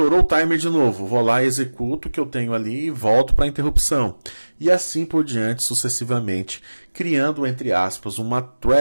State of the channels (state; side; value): inverted; both; correlation -1.00